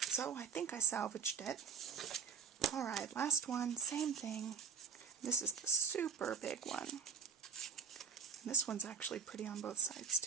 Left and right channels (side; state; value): left; quieter; 7.4 dB